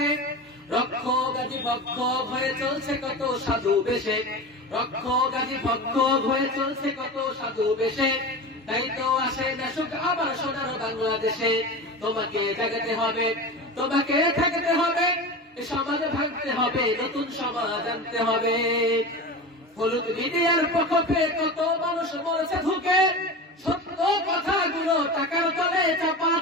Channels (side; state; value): both; normal; correlation 0.28